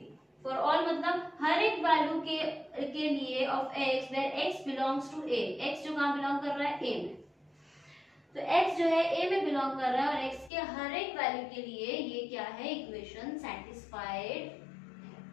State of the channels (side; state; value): right; drops out; at 10.5 s